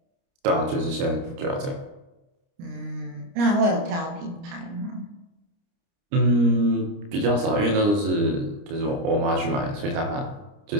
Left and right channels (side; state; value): left; late; 29 ms